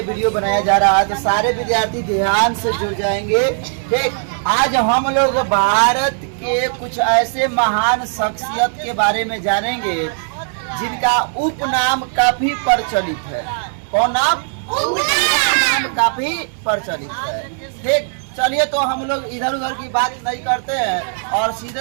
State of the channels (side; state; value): left; silent; digital silence